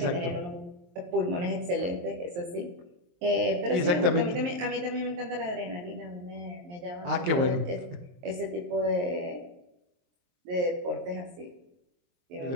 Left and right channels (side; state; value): left; late; 23 ms